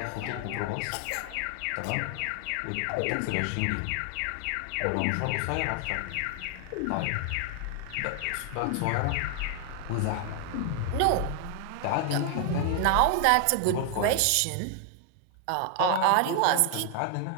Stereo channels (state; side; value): different; both; correlation 0.00